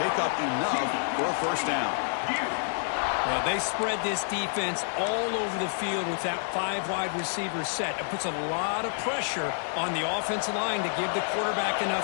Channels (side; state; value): right; silent; digital silence